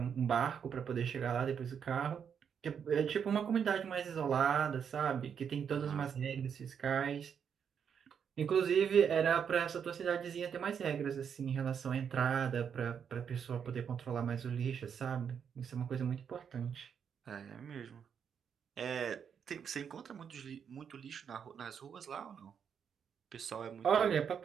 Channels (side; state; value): left; quieter; 7.5 dB